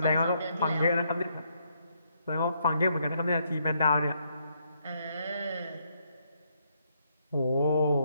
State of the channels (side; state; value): both; inverted; correlation -0.74